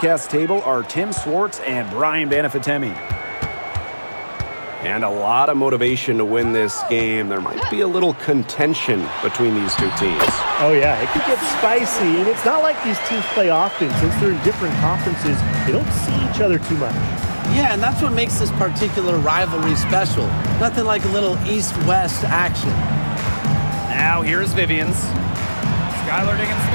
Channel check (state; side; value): inverted; both; correlation -1.00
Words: table are Tim Swartz and Brian Banafitemi. And a lot of motivation to win this game. There might be a little contention between these two teams. Oh, yeah, it could get spicy. And it's not like these teams play often. Since they're in different conferences, they don't see each other too much. Yeah, and that's what makes this particular rivalry special. Nothing like a little East-West action. Now here's Vivians. Skylar